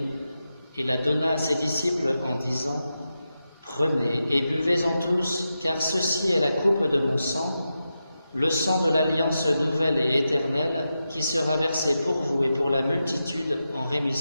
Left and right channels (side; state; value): both; inverted; correlation -0.89